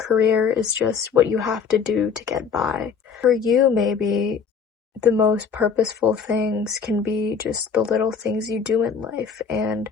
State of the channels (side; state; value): right; quieter; 6.2 dB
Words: is just what you have to do to get by. For you, maybe the most purposeful things can be just the little things you do in life. And